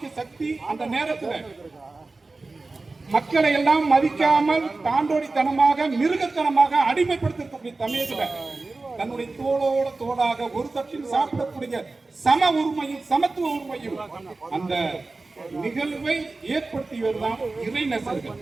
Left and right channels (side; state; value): left; quieter; 3.5 dB